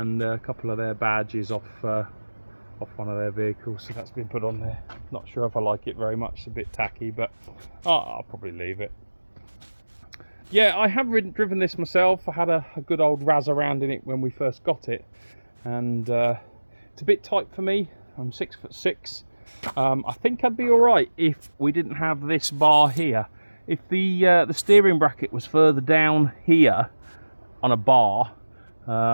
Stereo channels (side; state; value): both; inverted; correlation -1.00